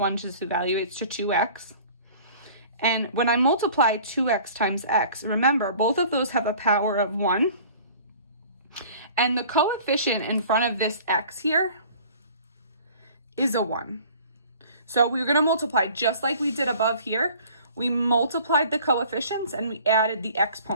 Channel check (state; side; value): inverted; both; correlation -0.48